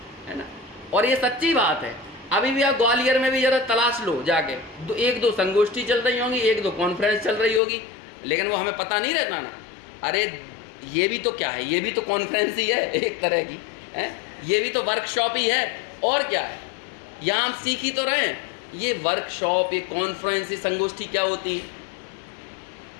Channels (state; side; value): drops out; right; at 7.6 s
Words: ना। और ये सच्ची बात है। अभी भी आप ग्वालियर में भी ज़रा तलाश लो जाके, 1-2 संगोष्ठी चल रही होंगी, 1-2 कॉन्फ्रेंस चल रही होगी, लेकिन वो हमें पता नहीं रहता ना। अरे ये भी तो क्या है, ये भी तो कॉन्फ्रेंस ही है एक तरह की, है, ये भी तो वर्कशॉप ही है, और क्या है। यहाँ हम सीख ही तो रहे हैं। ये वर्कशॉप, ये कॉन्फ्रेंस, ये संगोष्ठी क्या होती है?